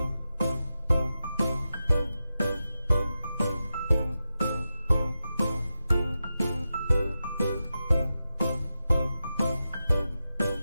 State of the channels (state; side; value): inverted; both; correlation -0.91